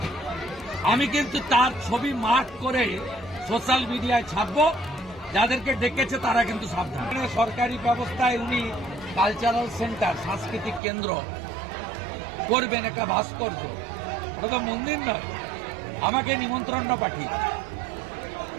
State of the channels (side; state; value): left; drops out; at 10.8 s